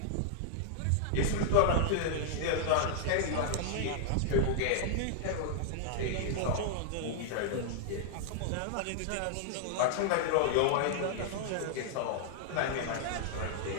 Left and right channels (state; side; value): different; both; correlation -0.01